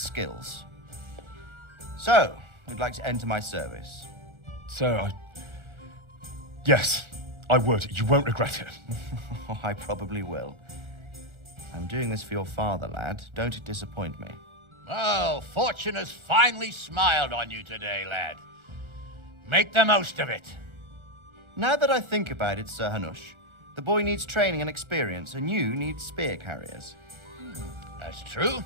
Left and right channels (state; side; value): late; left; 1.4 ms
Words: So, you'd like to enter my service? Sir, Yes, I would. You won't regret it. Oh, I probably will. I'm doing this for your father, lad. Don't disappoint me. Oh, fortune has finally smiled on you today, lad. Make the most of it. Now that I think about it, Sir Hanush, the boy needs training and experience, and you need spear carriers. That's true.